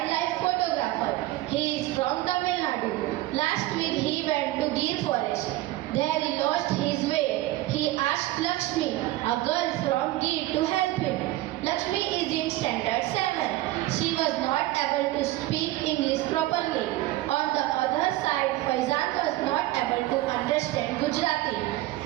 photographer. He is from Tamil Nadu. Last week he went to Gir forest. There he lost his way. He asked Lakshmi, a girl from Gir, to help him. Lakshmi is in standard 7. She was not able to speak English properly. On the other side, Faizan was not able to understand Gujarati.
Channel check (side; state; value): left; quieter; 16.9 dB